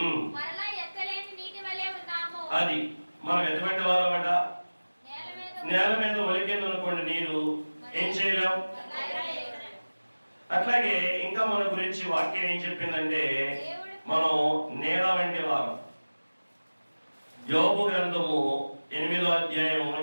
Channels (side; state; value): both; inverted; correlation -1.00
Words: అది మనం ఎటువంటి వారమట? నేల మీద ఒలికింది అనుకోండి నీరు, ఏం చేయలేం. అట్లాగే ఇంకా మన గురించి వాక్యం ఏం చెప్పిందంటే మనం నేల వంటి వారం. యోబు గ్రంథము 8వ అధ్యాయం